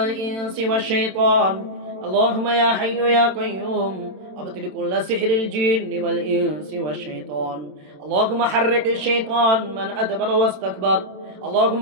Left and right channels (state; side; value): late; left; 27 ms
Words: والشيطان. اللهم يا حي يا قيوم، أبطل كل سحر الجن والإنس والشيطان. اللهم حرك الشيطان من أدبر واستكبر.